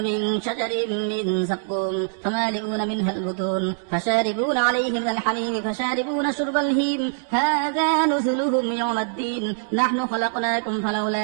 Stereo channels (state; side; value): silent; left; digital silence